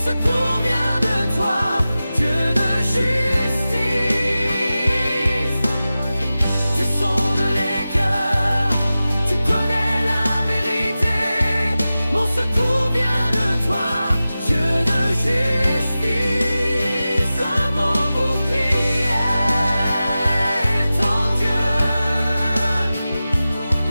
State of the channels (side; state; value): both; inverted; correlation -0.94